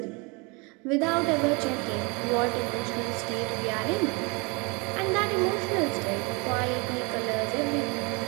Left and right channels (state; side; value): quieter; left; 29.5 dB